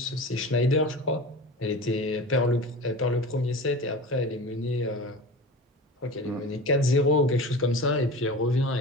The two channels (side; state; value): both; normal; correlation 0.33